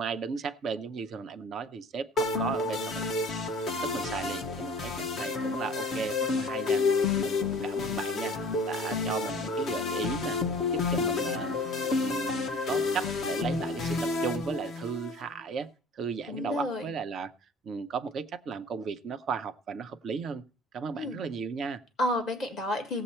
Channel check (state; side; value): normal; both; correlation 0.46